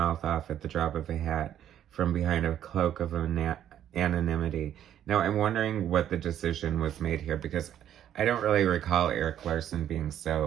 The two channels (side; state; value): left; quieter; 10.6 dB